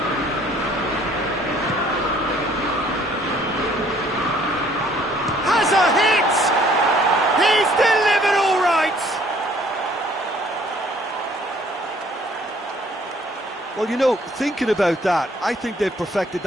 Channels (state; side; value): normal; both; correlation 0.59